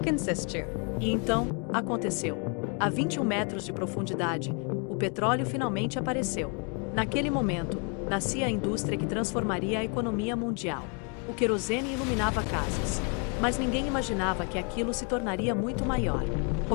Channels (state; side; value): quieter; right; 37.0 dB